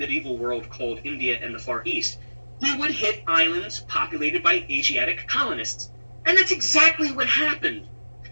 world called India and the Far East, he would hit islands populated by Asiatic colonists. And that's exactly what happened.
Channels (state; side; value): inverted; both; correlation -1.00